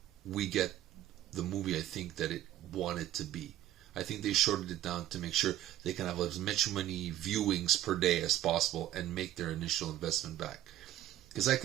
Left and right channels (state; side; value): quieter; left; 13.2 dB